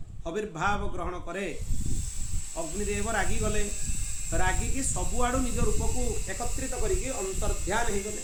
आविर्भाव ग्रहण करे अग्निदेव रागी गले रागिकी सबुआड़ू निज रूप को एकत्रित करके अंतर्ध्यान हो गले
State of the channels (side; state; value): both; identical; correlation 1.00